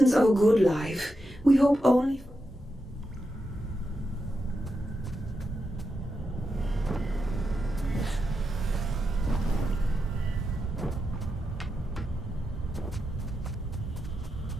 of a good life, we hope only...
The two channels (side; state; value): both; normal; correlation 0.87